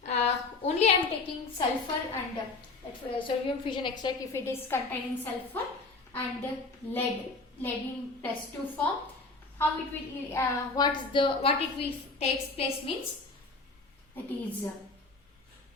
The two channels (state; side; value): quieter; right; 3.7 dB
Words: Only I am taking sulfur and sodium fusion extract if it is containing sulfur and lead in +2 form. How it will what it will takes place means, that is